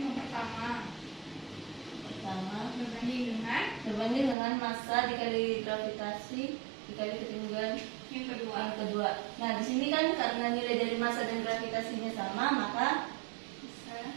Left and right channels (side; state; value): left; drops out; at 4.4 s